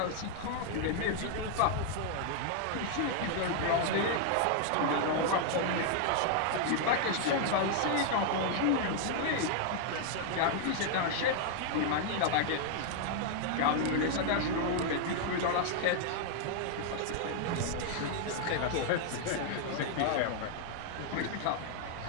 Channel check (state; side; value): different; both; correlation 0.00